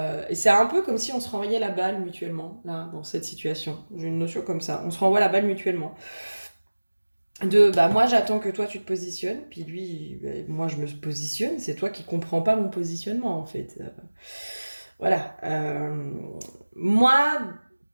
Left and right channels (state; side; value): inverted; both; correlation -1.00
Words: c'est un peu comme si on se renvoyait la balle mutuellement, là, dans cette situation. J'ai une notion comme ça. On se renvoie la balle mutuellement. Bah, moi, j'attends que toi, tu te positionnes, puis lui, moi, je me positionne. C'est toi qui comprends pas mon positionnement, en fait. Voilà. Moi,